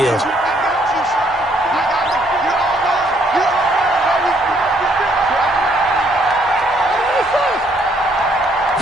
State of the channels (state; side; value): normal; both; correlation 0.68